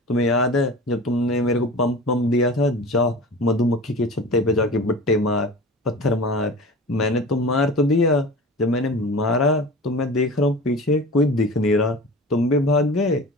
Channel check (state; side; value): normal; both; correlation 0.36